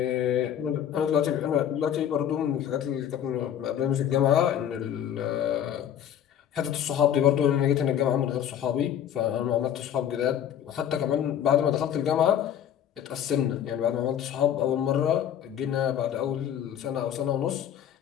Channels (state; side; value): quieter; right; 9.9 dB